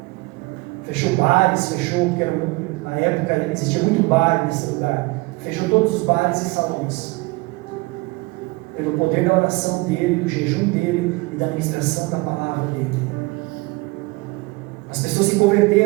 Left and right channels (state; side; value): quieter; left; 23.8 dB